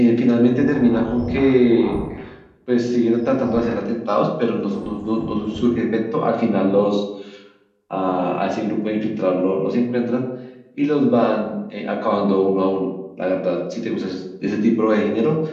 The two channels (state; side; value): identical; both; correlation 1.00